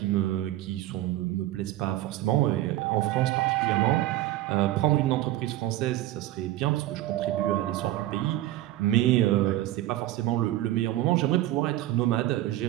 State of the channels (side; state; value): left; quieter; 15.2 dB